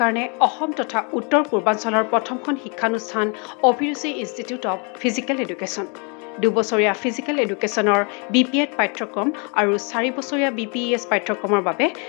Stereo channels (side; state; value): right; quieter; 34.6 dB